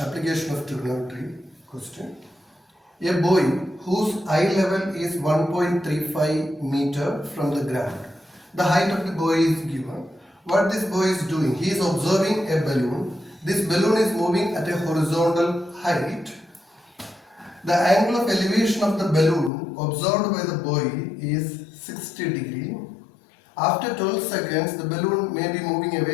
of trigonometry question. A boy whose eye level is 1.35 meter from the ground. The height of the boy is given. What this boy is doing? He is observing a balloon. This balloon is moving at a horizontal height. The angle of elevation of the balloon observed by the boy is 60 degree. After 12 seconds, the balloon may be moving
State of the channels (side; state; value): right; drops out; at 19.5 s